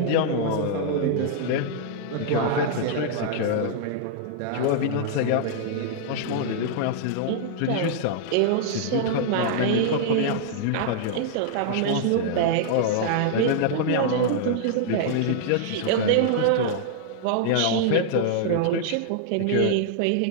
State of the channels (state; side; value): different; both; correlation -0.01